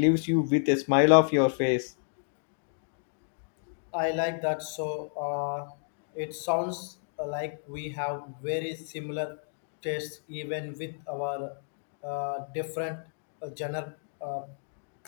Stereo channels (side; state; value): right; silent; digital silence